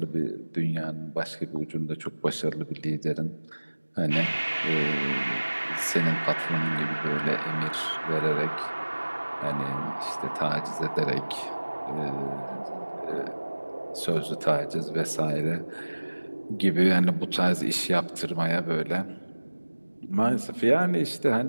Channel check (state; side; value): inverted; both; correlation -1.00